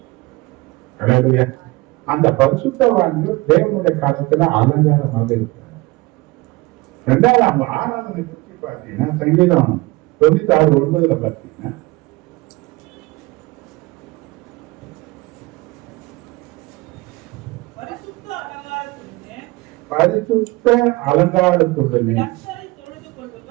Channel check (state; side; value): quieter; left; 22.2 dB